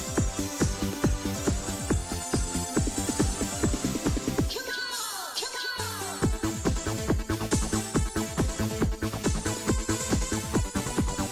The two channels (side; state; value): both; identical; correlation 1.00